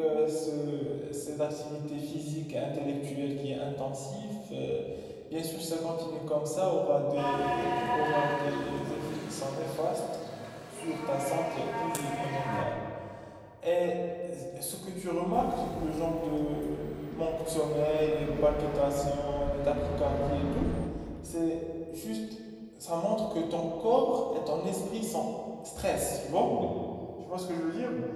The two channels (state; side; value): identical; both; correlation 1.00